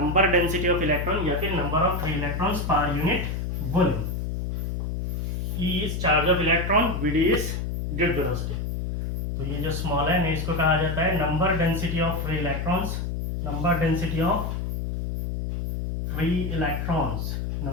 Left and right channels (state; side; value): noise; left; hum, 2 dB below the sound